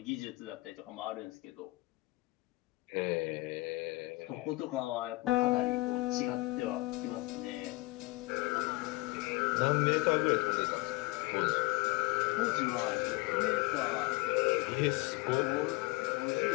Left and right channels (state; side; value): quieter; right; 22.0 dB